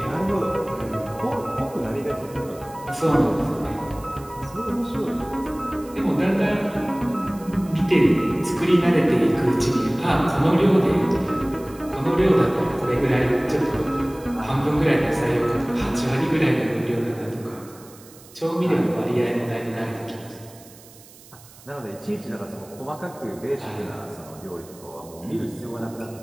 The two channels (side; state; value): right; noise; hiss, 22 dB below the sound